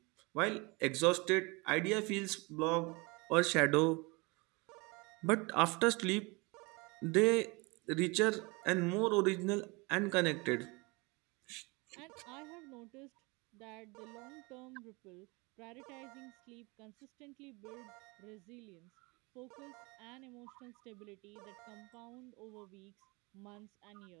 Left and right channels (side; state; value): left; quieter; 27.0 dB